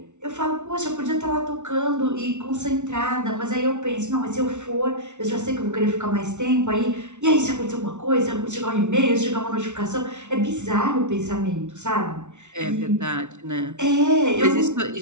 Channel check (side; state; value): left; late; 0.83 ms